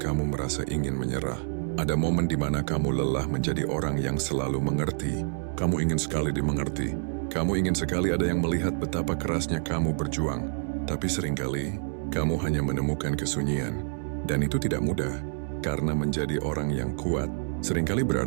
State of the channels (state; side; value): silent; left; digital silence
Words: merasa ingin menyerah. Ada momen di mana kamu lelah menjadi orang yang selalu mengerti. Kamu ingin sekali dimengerti. Kamu ingin sekali ada yang melihat betapa kerasnya kamu berjuang. Tapi seringkali, kamu hanya menemukan kesunyian. Dan itu tidak mudah, karena menjadi orang yang kuat seringkali